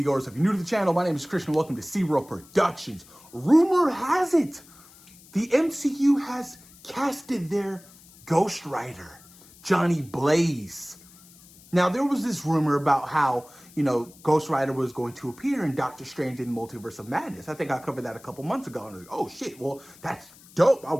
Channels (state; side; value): noise; left; hiss, 24 dB below the sound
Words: If you're new to the channel, my name is Christian. Welcome to SeaWorld Productions. Rumor has it, the MCU has casted their Ghost Rider, Johnny Blaze. Now, there was this rumor about how, Ghost Rider was going to appear in Doctor Strange in the Multiverse of Madness. I think I covered that a couple months ago, and I was like, oh shit, well, that's dope. I